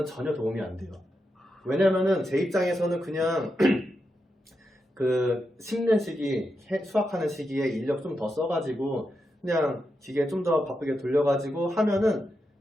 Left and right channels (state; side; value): normal; both; correlation 0.86